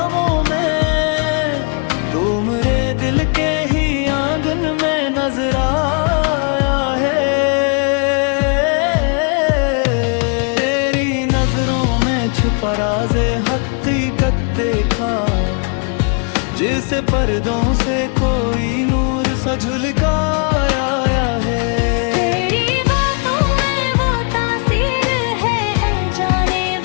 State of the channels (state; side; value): quieter; right; 38.8 dB